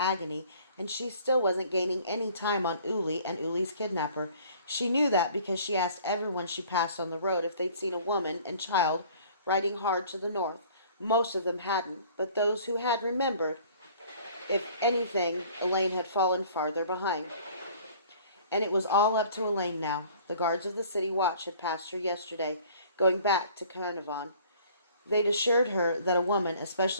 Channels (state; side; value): inverted; both; correlation -0.52